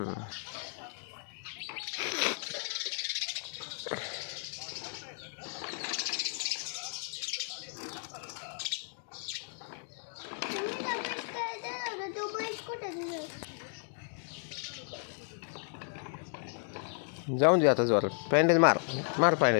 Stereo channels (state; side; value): silent; right; 55 dB below the other